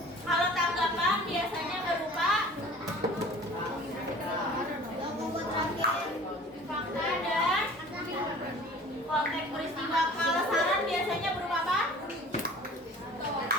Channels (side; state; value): both; normal; correlation 0.45